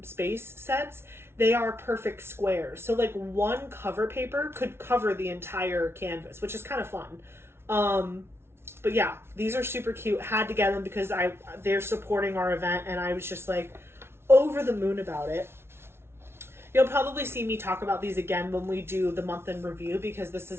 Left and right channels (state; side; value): late; left; 0.12 ms